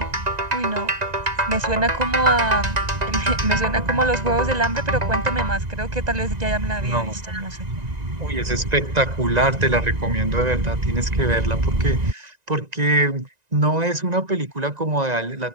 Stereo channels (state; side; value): late; left; 1.9 ms